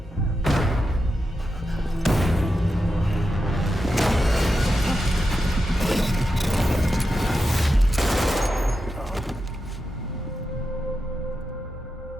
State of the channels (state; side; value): normal; both; correlation 0.89